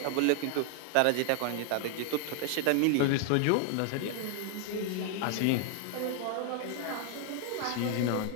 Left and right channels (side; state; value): both; different; correlation 0.00